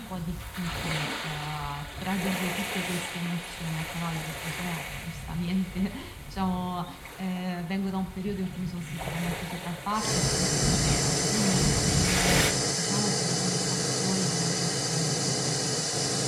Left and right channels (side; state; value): both; identical; correlation 1.00